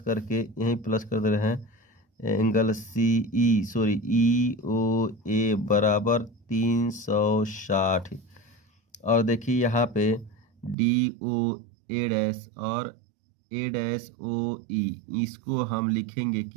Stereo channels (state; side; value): drops out; left; at 10.8 s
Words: करके यहीं प्लस कर दे रहे हैं एंगल EOA बराबर 360। और देखिए यहाँ पे DOA' और A'OE, इसको हम लिखेंगे